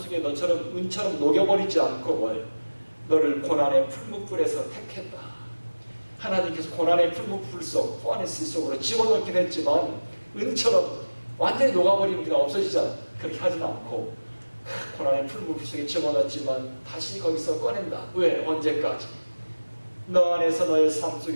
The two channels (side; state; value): both; inverted; correlation -1.00